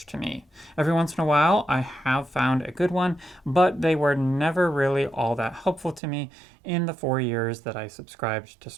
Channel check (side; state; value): left; drops out; at 6.0 s